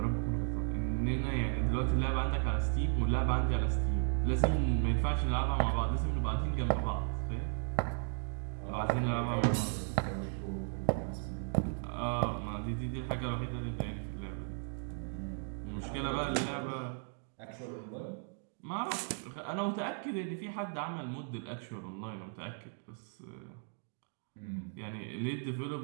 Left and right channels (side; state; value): left; silent; 54 dB below the other